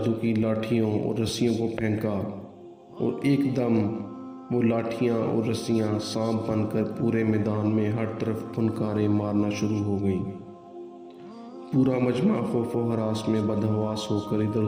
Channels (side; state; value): both; identical; correlation 1.00